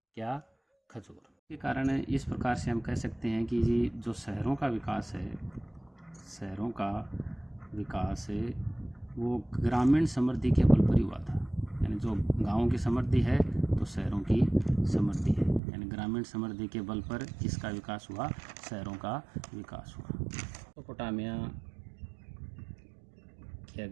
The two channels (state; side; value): drops out; left; at 15.6 s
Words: क्या? खजूर। के कारण इस प्रकार से हम कह सकते हैं कि जी जो शहरों का विकास है, शहरों का विकास है वो ग्रामीण समृद्धि के बल पर ही हुआ था। यानी जो गांवों की समृद्धि है तो शहरों की समृद्धि है, यानी ग्रामीण समृद्धि के बल पर किसका विकास हुआ? शहरों का विकास हुआ। मेसोपोटामिया की